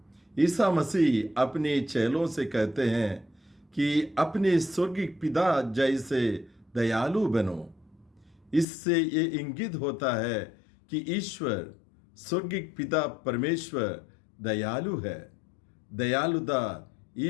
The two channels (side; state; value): right; drops out; at 8.7 s